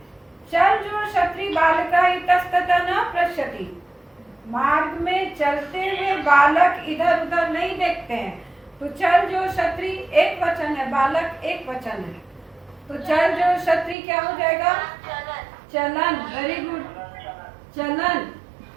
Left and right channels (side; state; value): left; drops out; at 14.0 s